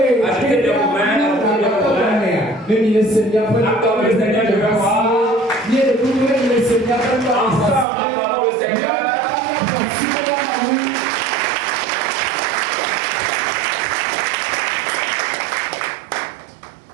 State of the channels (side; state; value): left; drops out; at 7.9 s